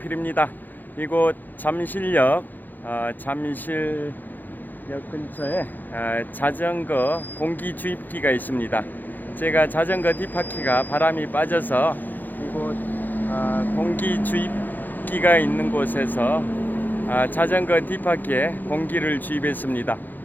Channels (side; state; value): right; late; 0.086 ms